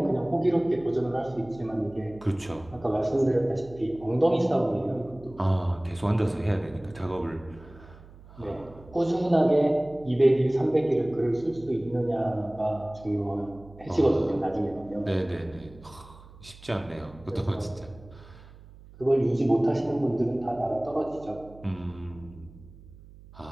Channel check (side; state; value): right; noise; hum, 21 dB below the sound